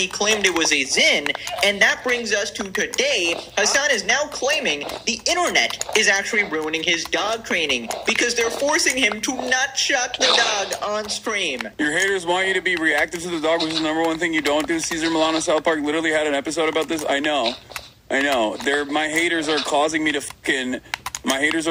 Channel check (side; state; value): both; identical; correlation 1.00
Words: claimed it was a Zin. And that brings us to today. Hassan is now claiming the internet is actually ruining his dog training because they're forcing him to not shock the dog on stream. Your haters want you to be reactive to the dog, which is the number one thing you don't do. Caesar Milano South Park literally had an episode about this. I know. My haters are causing me to